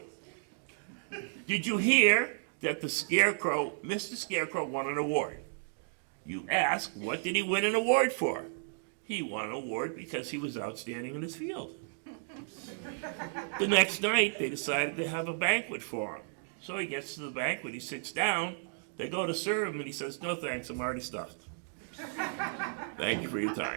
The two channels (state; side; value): silent; left; digital silence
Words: Did you hear that the Scarecrow, Mr. Scarecrow, won an award? You ask, what did he win an award for? He won an award because he was outstanding in his field. The next night, they decided to have a banquet for him. So he gets to the banquet, he sits down, they go to serve him, and he says, no thanks, I'm already stuffed. Thank you for your